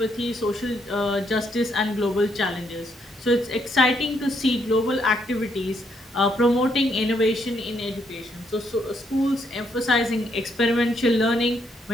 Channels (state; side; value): normal; both; correlation 0.74